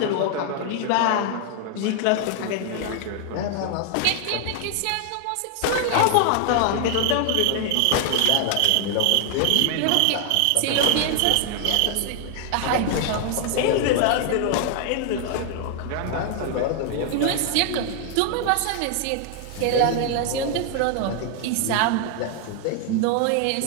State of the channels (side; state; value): both; different; correlation 0.00